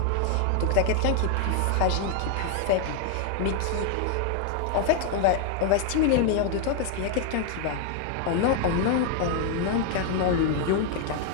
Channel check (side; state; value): both; different; correlation 0.01